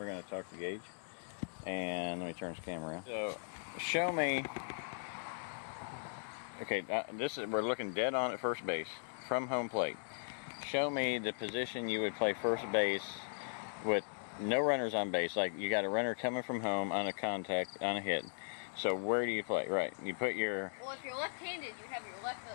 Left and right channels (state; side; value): silent; right; digital silence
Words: going to talk to Gage. And let me turn this camera around. So, show me. Okay, we're looking dead on at first base from home plate. Show me the position you would play first base with no runners on base. Like you got a runner coming from home on a contact, on a hit. So where do you play? Right. You put your. Well, if you're left-handed, you have your left